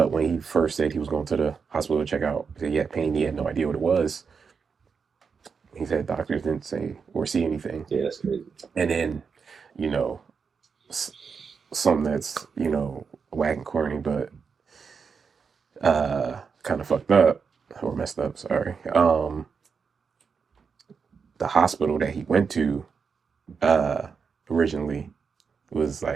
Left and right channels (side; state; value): left; quieter; 5.8 dB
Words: when he first said he was going to the hospital to check out, he said he had pain, he had no idea what it was. He said doctors didn't say or see anything. Yeah, that's crazy. And then, you know, s- something that's, whack and corny, but kind of fucked up or messed up, sorry. The hospital that he went to uh originally was